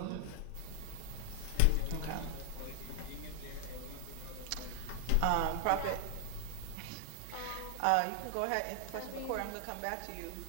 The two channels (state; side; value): different; both; correlation 0.00